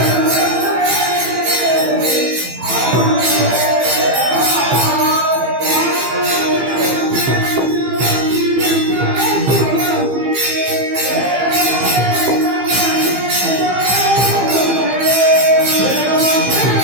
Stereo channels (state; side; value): late; left; 15 ms